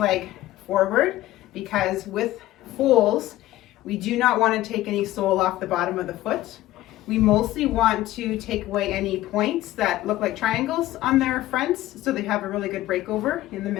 forward, because with foals, we do not want to take any sole off the bottom of the foot. We mostly want to take away any points that look like triangles on their fronts, so they have a really good breakover in the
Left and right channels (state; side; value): quieter; right; 15.6 dB